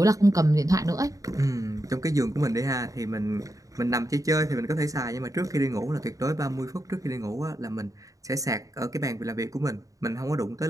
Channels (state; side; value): late; left; 0.16 ms